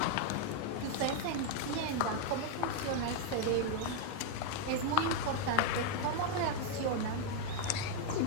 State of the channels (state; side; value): different; both; correlation 0.00